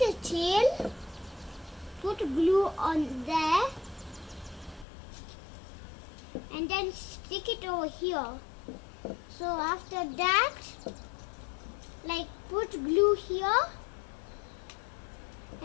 tail, put glue on there and then stick it over here. So after that, like put glue here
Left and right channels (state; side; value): drops out; right; at 4.9 s